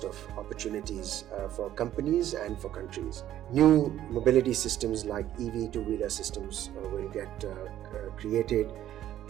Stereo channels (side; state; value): left; quieter; 12.2 dB